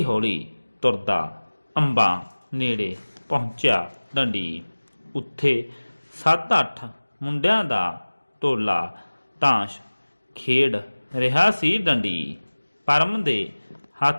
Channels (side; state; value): both; inverted; correlation -1.00